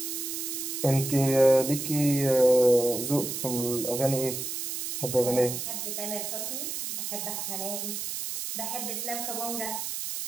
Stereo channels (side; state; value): right; noise; hiss, 4 dB below the sound